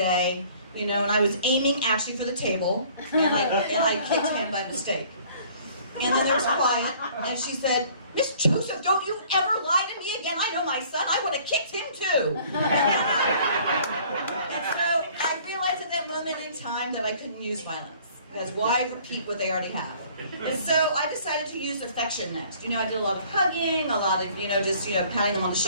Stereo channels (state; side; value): inverted; both; correlation -0.54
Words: you know, and I was aiming actually for the table, and I kicked him by mistake. And then there was quiet, and she said, Miss Joseph, don't you ever lie to me again. I know my son. I would have kicked him too. And so I realized at that moment in time that I couldn't use violence. Because why repeat what they already have? And so I decided to use affection next. You know, I did a lot of hugging, a lot of, you know, just, you know, patting them on the